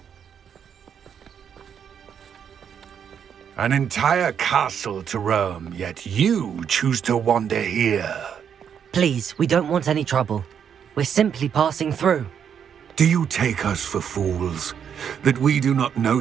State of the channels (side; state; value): left; quieter; 8.0 dB